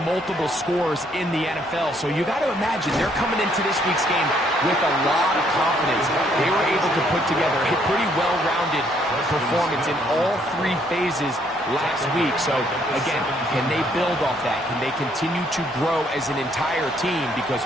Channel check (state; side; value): normal; both; correlation 0.68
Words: multiple scores in the NFL, so you got to imagine they're coming into this week's game with a lot of confidence. They were able to put together a pretty well-rounded performance in all 3 phases last week. So, again, can they build off that? Can they continue to grow as an entire team? Because